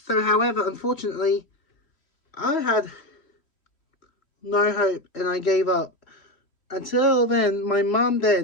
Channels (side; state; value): right; late; 3.1 ms